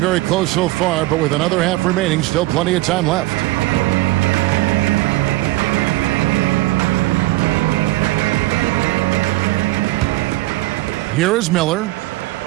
close so far, but with another half remaining, still plenty of time left. Here is Miller,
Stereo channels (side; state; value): left; quieter; 18.6 dB